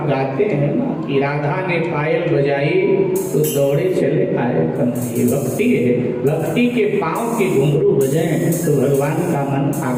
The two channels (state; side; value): identical; both; correlation 1.00